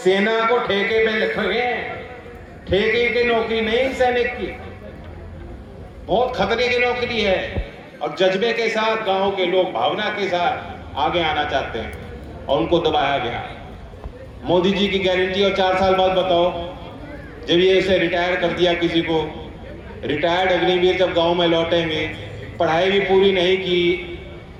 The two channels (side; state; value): both; identical; correlation 1.00